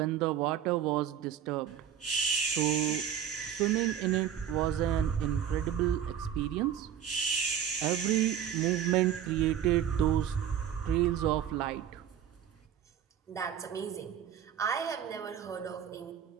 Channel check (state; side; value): quieter; left; 9.5 dB